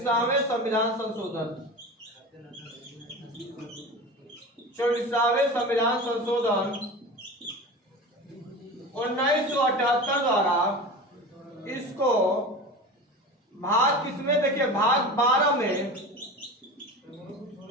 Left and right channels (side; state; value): both; normal; correlation 0.31